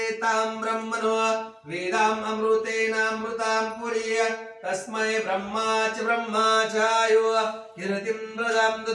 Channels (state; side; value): identical; both; correlation 1.00